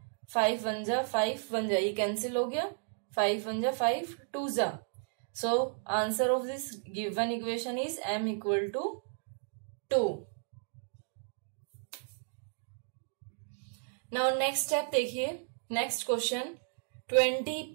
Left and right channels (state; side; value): silent; left; digital silence